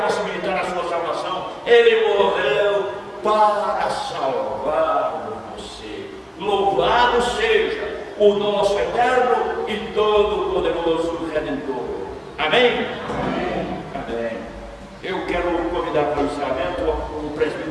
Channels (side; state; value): both; identical; correlation 1.00